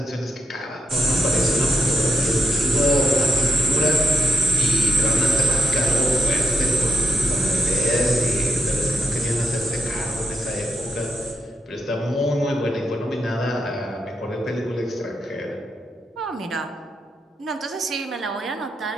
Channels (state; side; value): normal; both; correlation 0.81